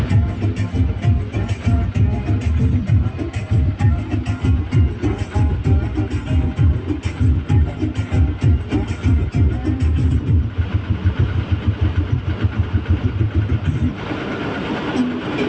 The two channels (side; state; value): both; identical; correlation 1.00